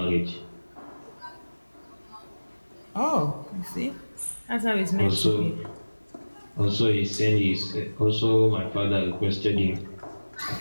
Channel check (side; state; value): both; inverted; correlation -1.00